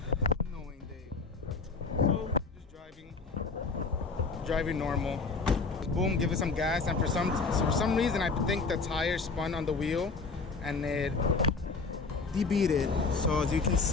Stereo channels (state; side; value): quieter; right; 4.3 dB